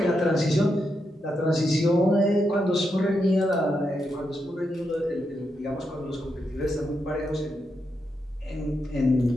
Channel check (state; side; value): normal; both; correlation 0.84